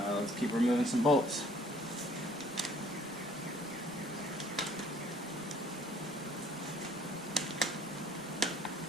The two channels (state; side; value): normal; both; correlation 0.58